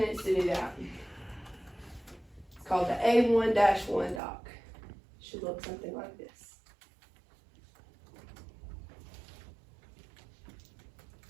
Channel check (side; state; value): left; drops out; at 4.2 s